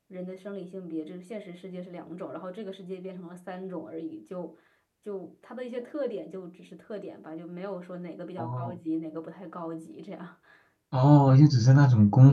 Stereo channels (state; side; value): identical; both; correlation 1.00